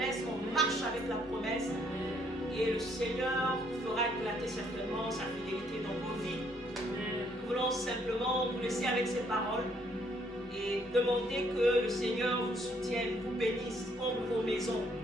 on marche avec la promesse. Et le Seigneur fera éclater certainement sa fidélité dans vos vies. Nous voulons simplement vous laisser avec ces paroles et demander que le Seigneur vous soutienne, vous bénisse comme vos maisons.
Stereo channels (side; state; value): both; normal; correlation 0.68